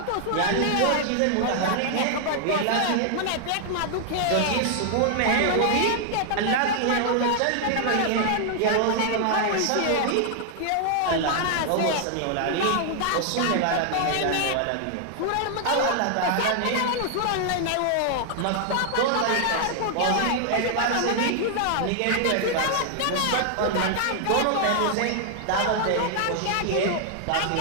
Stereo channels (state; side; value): different; both; correlation 0.00